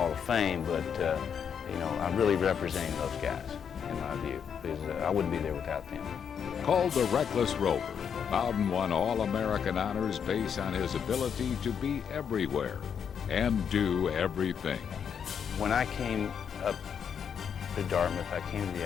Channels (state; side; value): quieter; right; 7.5 dB